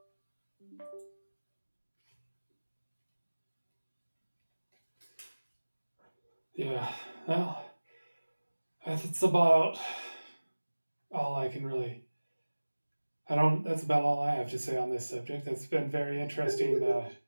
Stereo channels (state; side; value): inverted; both; correlation -1.00